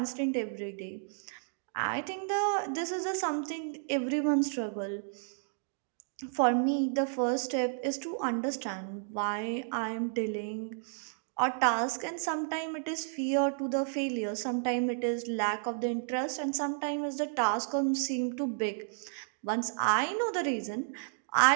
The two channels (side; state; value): left; silent; digital silence